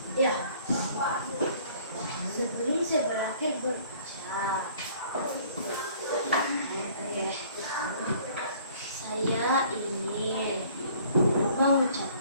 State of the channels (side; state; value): both; inverted; correlation -0.55